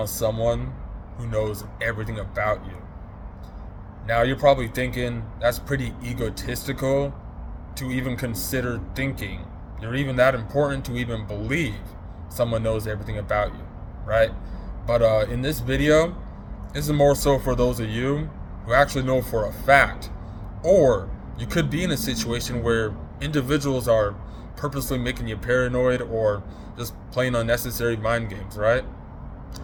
someone who knows everything about you. Now, you're probably thinking that's pretty egotistical to even consider thinking. You're even that important to even believe someone knows everything about you, right? But in this video, this is more so for those of you who actually know for a fact, or you could be in a situation where individuals are purposely making you paranoid or just playing unnecessary mind games, right?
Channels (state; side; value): identical; both; correlation 1.00